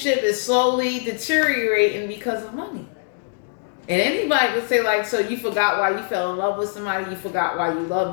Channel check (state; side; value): silent; right; digital silence